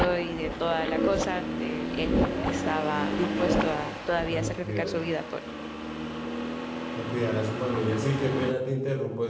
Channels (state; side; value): identical; both; correlation 1.00